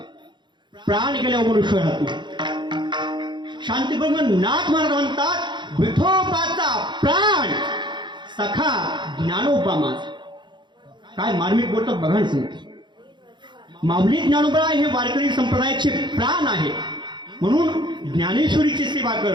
प्राण गेल्यावर मनुष्य राहतो. शांतीब्रह्म नाथ महाराज म्हणतात, विठोबाचा प्राण सखा ज्ञानोबा माझा. काय मार्मिक बोलतात बघा ना सांगते. माऊली ज्ञानोबराय हे वारकरी संप्रदायाचे प्राण आहे. म्हणून ज्ञानेश्वरीची सेवा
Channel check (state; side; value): late; left; 0.22 ms